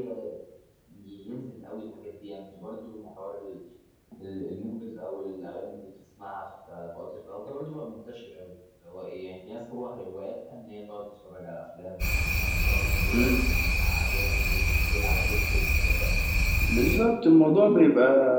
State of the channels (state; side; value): identical; both; correlation 1.00